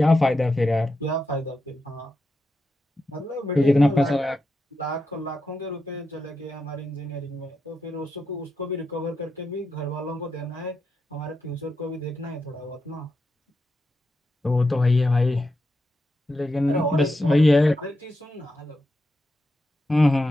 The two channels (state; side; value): normal; both; correlation 0.87